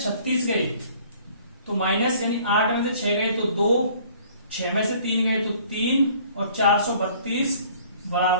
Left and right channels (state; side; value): inverted; both; correlation -0.54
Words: 36 गए तो माइनस यानी 8 में से 6 गए तो 2, 6 में से 3 गए तो 3 और 432